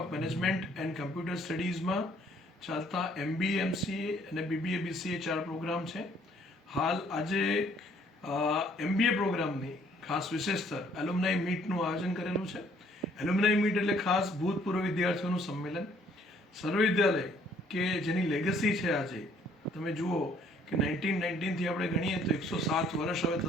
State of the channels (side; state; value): both; normal; correlation 0.62